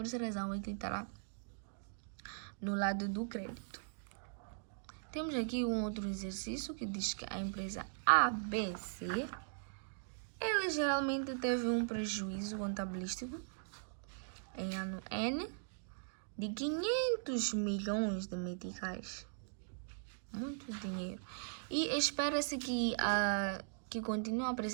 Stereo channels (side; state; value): left; silent; digital silence